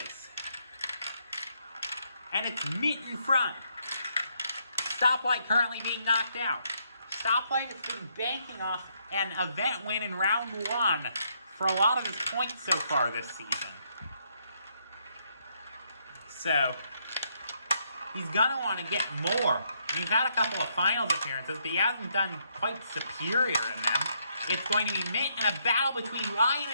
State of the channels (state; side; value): inverted; both; correlation -0.74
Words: And it's Meat in front. Stoplight currently being knocked out. Stoplight has been banking off an event win in round 1 for a lot of his points so far this season. So he's gonna want to get more. He's had a couple of finals appearances, but he hasn't done quite superior in them. It's going to be Mint and a battle between Lion